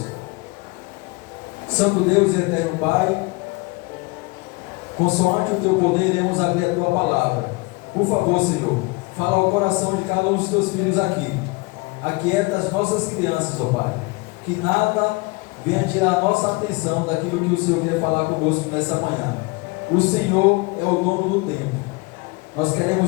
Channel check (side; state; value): right; quieter; 26.4 dB